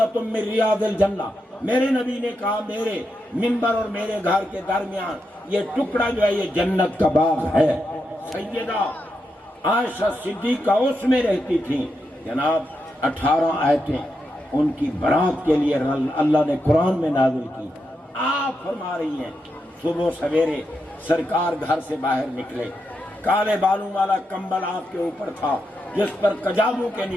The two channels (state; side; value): normal; both; correlation 0.85